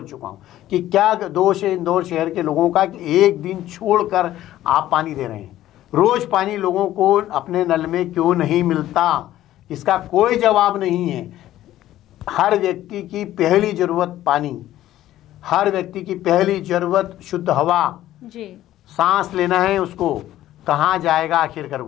चुका हूँ कि क्या दोष है इंदौर शहर के लोगों का कि एक दिन छोड़कर आप पानी दे रहे हैं। रोज़ पानी लोगों को अपने नल में क्यों नहीं मिलता, इसका कोई जवाब नहीं है। हर व्यक्ति की पहली ज़रूरत पानी, हर व्यक्ति की पहली ज़रूरत शुद्ध हवा जी, सांस लेना है उसको, कहाँ जाएगा आखिरकार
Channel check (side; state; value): right; quieter; 13.8 dB